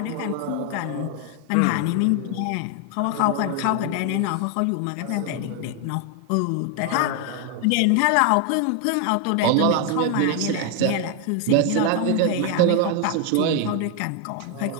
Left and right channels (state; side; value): different; both; correlation 0.01